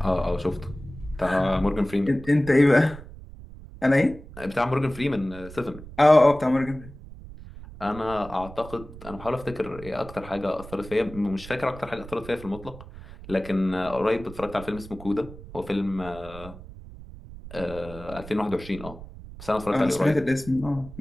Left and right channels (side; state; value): right; noise; rumble, 15 dB below the sound